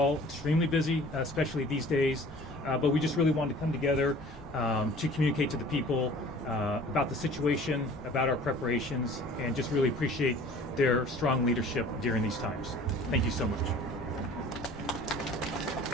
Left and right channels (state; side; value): normal; both; correlation 0.47